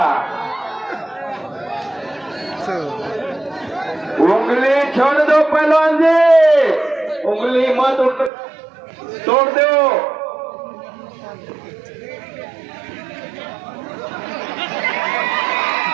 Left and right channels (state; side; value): drops out; left; at 8.3 s